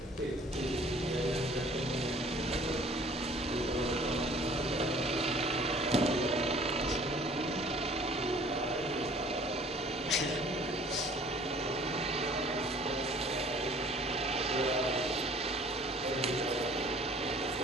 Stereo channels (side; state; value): both; normal; correlation 0.53